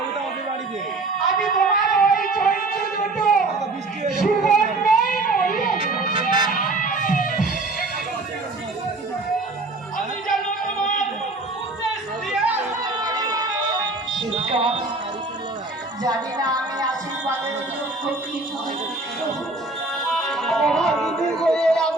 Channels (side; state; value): left; quieter; 3.2 dB